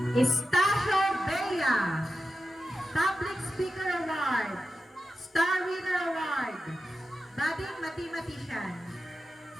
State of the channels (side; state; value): both; normal; correlation 0.92